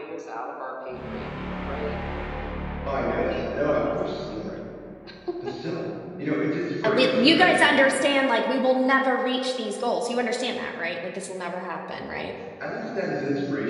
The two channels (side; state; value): both; identical; correlation 1.00